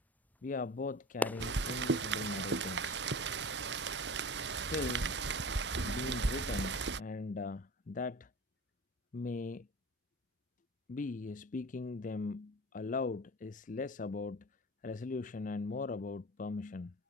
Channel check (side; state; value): both; normal; correlation 0.36